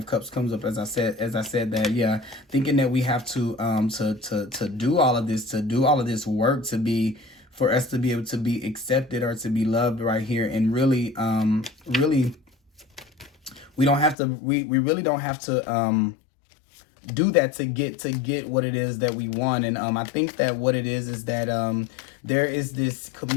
Cups comes up as I said that, yeah, thinking that we have to do all of this work for us to be able to be accepted or to be loved right here. And really we really don't have to do that to get what it is that we want. And I think that what it is that there is this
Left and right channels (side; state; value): right; drops out; at 14.2 s